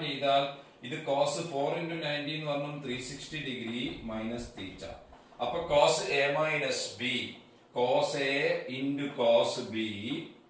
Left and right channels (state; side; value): identical; both; correlation 1.00